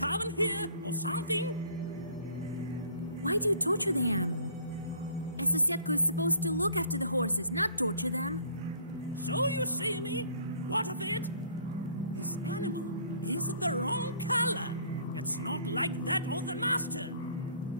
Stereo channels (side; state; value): both; inverted; correlation -0.55